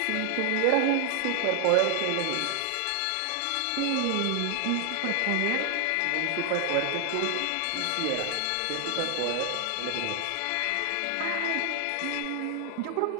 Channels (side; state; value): both; different; correlation 0.00